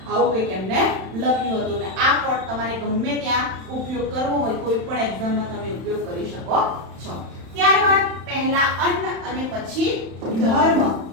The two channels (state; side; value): late; left; 31 ms